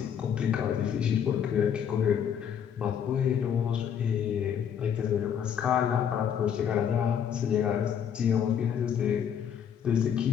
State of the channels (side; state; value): right; quieter; 8.4 dB